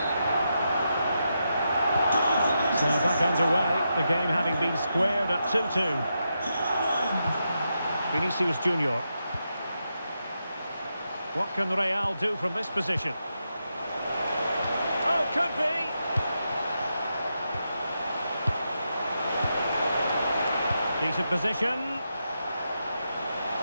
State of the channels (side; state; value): both; inverted; correlation -0.85